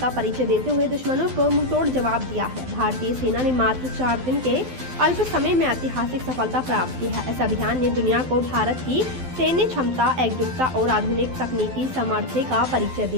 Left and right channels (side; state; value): left; late; 12 ms